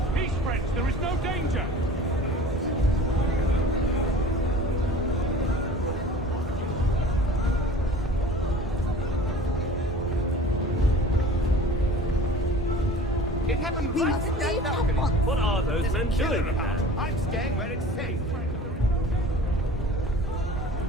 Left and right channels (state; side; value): normal; both; correlation 0.42